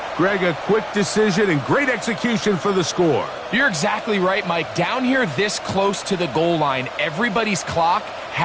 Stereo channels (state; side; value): identical; both; correlation 1.00